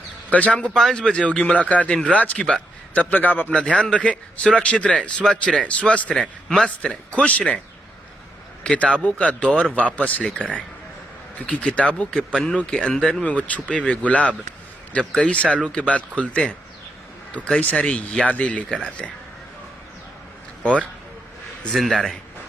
कल शाम को 5 बजे होगी मुलाकात इन राज की बात। तब तक आप अपना ध्यान रखें, सुरक्षित रहें, स्वच्छ रहें, स्वस्थ रहें, मस्त रहें, खुश रहें। किताबों का दौर वापस लेकर आएं, क्योंकि किताबों के पन्नों के अंदर में वो छुपे हुए गुलाब जब कई सालों के बाद खुलते हैं तो कई सारी यादें लेकर आते हैं। और जिंदा रहें।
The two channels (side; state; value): both; normal; correlation 0.81